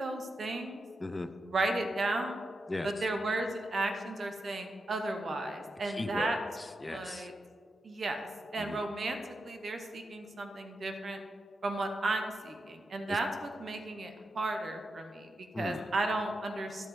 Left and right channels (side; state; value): both; normal; correlation 0.87